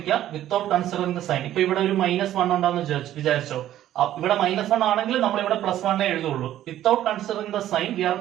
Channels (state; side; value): quieter; left; 12.6 dB